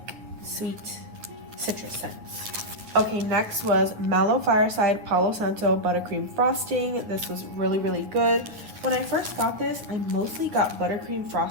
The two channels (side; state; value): left; late; 9.8 ms